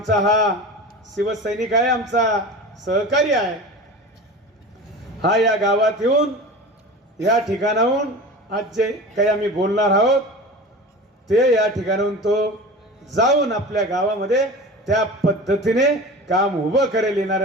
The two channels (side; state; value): both; normal; correlation 0.33